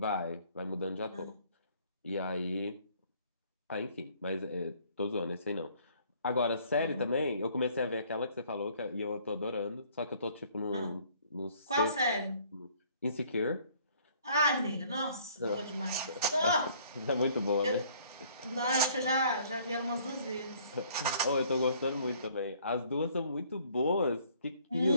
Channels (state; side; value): inverted; both; correlation -0.59